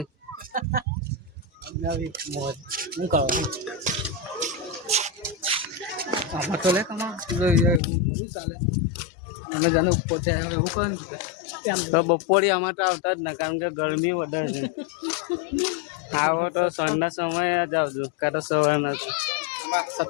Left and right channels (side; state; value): right; drops out; at 7.8 s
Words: તો બપોરે આમાં તો આવતા જ ના, કારણ કે ગરમી વધારે છે। આવો તો સાંજના સમયે જ આવજો, કાં તો સવારના,